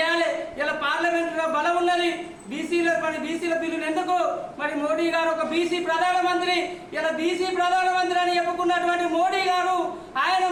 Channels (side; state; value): both; identical; correlation 1.00